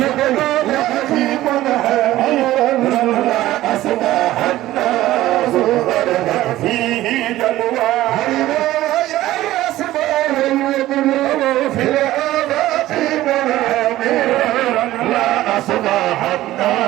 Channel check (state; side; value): quieter; left; 15.4 dB